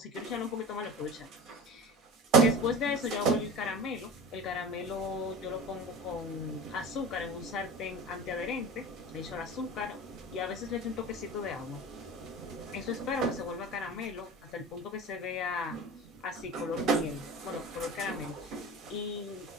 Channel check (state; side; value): normal; both; correlation 0.34